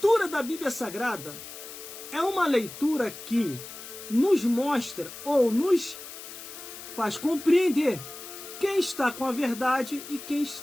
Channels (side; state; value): left; noise; hiss, 13 dB below the sound